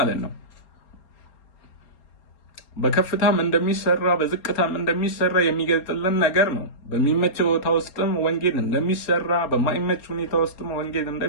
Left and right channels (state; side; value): late; right; 4.3 ms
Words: ነው። በከፍታም እንደሚሰራ በዝቅታም እንደሚሰራ የሚገልጥልን ነገር ነው። በሚመች ቦታ ውስጥም ወንጌል እንደሚሰራ፣ በማይመች ሁኔታ ውስጥም ወንጌል